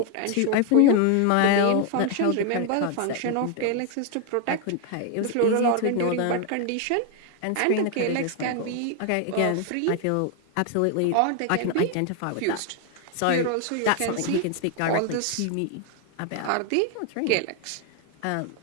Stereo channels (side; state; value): both; different; correlation 0.01